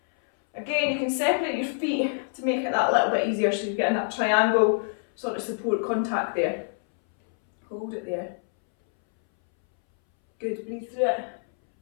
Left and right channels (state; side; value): silent; right; 61 dB below the other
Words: Again, you can separate your feet to make it that little bit easier, so you're getting that triangle sort of support contact there. Hold it there. Good, breathe through it.